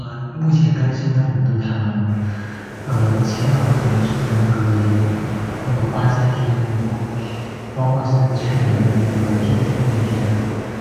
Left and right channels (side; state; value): both; identical; correlation 1.00